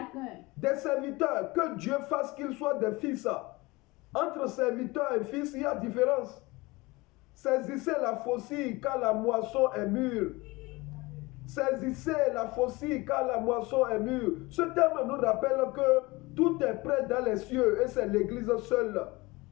Des serviteurs, que Dieu fasse qu'ils soient des fils. Entre serviteurs et fils, il y a différence. Saisissez la faucille car la moisson est mûre. Saisissez la faucille car la moisson est mûre. Ce terme nous rappelle que tout est prêt dans les cieux et c'est l'église seule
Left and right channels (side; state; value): right; quieter; 22.7 dB